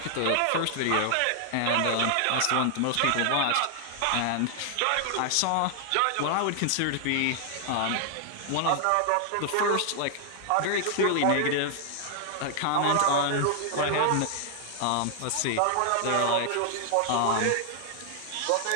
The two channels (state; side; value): different; both; correlation 0.00